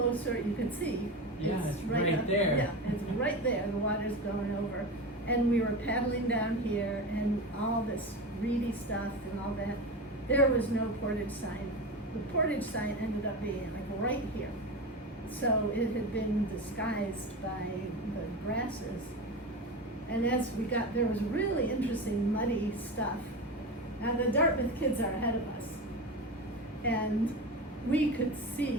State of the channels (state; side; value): normal; both; correlation 0.24